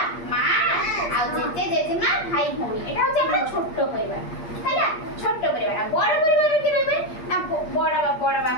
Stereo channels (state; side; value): late; right; 8.5 ms